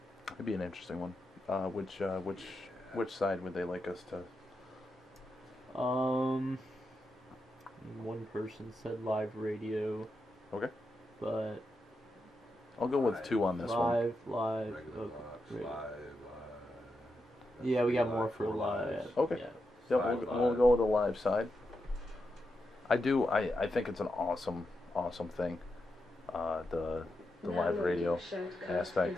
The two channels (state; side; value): normal; both; correlation 0.86